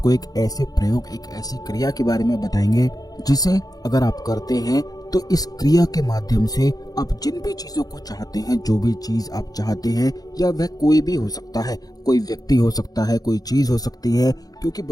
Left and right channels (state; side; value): late; right; 0.18 ms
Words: एक ऐसे प्रयोग, एक ऐसी क्रिया के बारे में बताएंगे जिसे अगर आप करते हैं तो इस क्रिया के माध्यम से आप जिन भी चीजों को चाहते हैं, जो भी चीज आप चाहते हैं, या वह कोई भी हो सकता है, कोई व्यक्ति हो सकता है, कोई चीज हो सकती है, क्योंकि